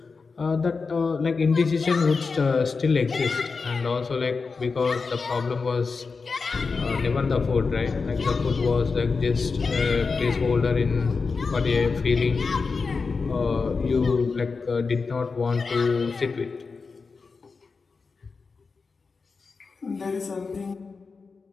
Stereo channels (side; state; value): right; quieter; 4.6 dB